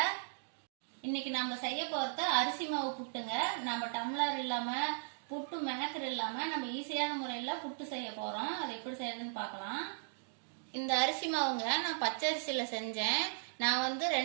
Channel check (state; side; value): silent; left; digital silence